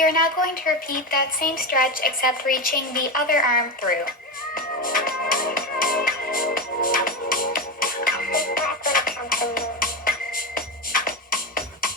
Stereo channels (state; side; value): normal; both; correlation 0.17